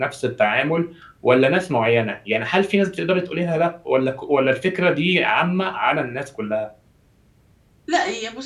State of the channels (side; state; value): both; identical; correlation 1.00